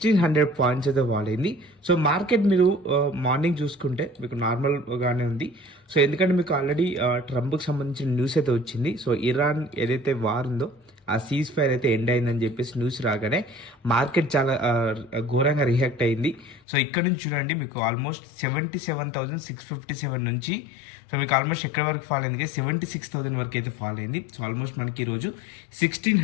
పాయింట్స్ అయితే ఫాల్ అయింది. సో మార్కెట్ మీరు మార్నింగ్ చూసుకుంటే మీకు నార్మల్గానే ఉంది. సో ఎందుకంటే మీకు ఆల్రెడీ ట్రంప్కి సంబంధించిన న్యూస్ అయితే వచ్చింది. సో ఇరాన్ ఏదైతే వార్ ఉందో ఆ సీజ్ ఫైర్ అయితే ఎండ్ అయిందని చెప్పేసి న్యూస్ రాగానే మార్కెట్ చాలా ఘోరంగా రియాక్ట్ అయింది. సో ఇక్కడ నుంచి చూడండి మీకు ఆల్మోస్ట్ 77,657 నుంచి సో మీకు ఆల్మోస్ట్ ఎక్కడి వరకు ఫాల్ అయింది, 76,000 వరకు అయితే ఫాల్ అయింది. సో ఆల్మోస్ట్ మనకి ఈరోజు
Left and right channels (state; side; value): drops out; right; at 16.6 s